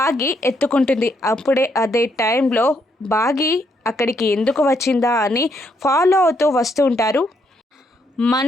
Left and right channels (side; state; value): both; normal; correlation 0.74